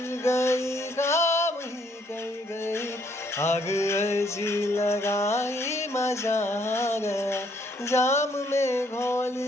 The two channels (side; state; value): both; normal; correlation 0.68